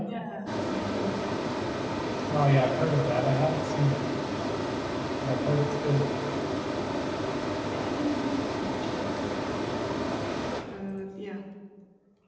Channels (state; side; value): identical; both; correlation 1.00